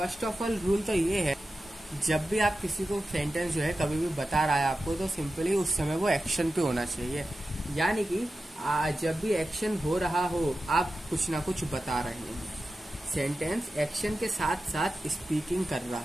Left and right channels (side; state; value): both; normal; correlation 0.93